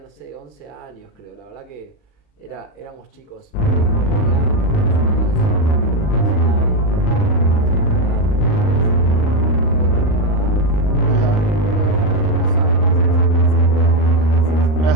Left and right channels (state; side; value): late; right; 39 ms